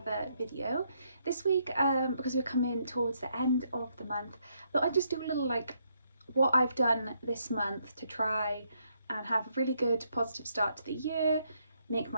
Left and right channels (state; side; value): inverted; both; correlation -0.75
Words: video. This week, because we're coming towards the end of the month, I thought I'd just do a little what I've done this month to try and have a really good positive start to the year, make